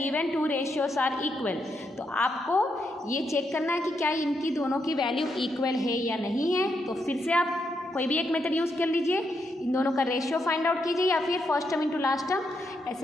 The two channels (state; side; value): normal; both; correlation 0.80